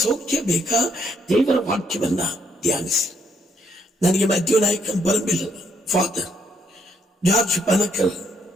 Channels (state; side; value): normal; both; correlation 0.72